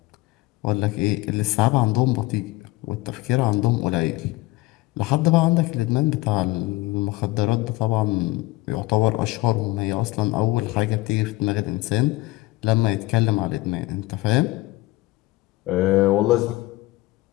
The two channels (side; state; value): right; quieter; 20.1 dB